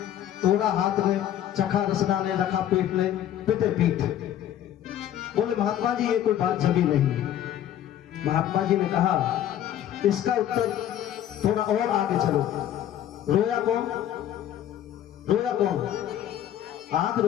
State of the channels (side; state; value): right; quieter; 11.1 dB